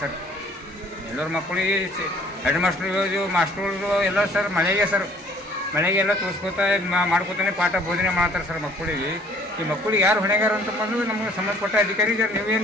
ಸರ್. ಎಲ್ಲರ ಮಕ್ಕಳಿಗೆ ಹೆಡ್ ಮಾಸ್ಟರ್ಗಳು ಎಲ್ಲ ಸರ್ ಮಳೆಗೆಲ್ಲ ತೋರಿಸ್ಕೋತಾ ಮಾಡ್ಕೋತಾನೆ ಪಾಠ ಬೋಧನೆ ಮಾಡ್ತಾರೆ ಸರ್ ಮಕ್ಕಳಿಗೆ. ಈ ಮಕ್ಕಳಿಗೆ ಯಾರು ಹೊಣೆಗಾರ ಅಂತ ಬಂದು ನಮಗೆ ಸಂಬಂಧಪಟ್ಟ ಅಧಿಕಾರಿ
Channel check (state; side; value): normal; both; correlation 0.57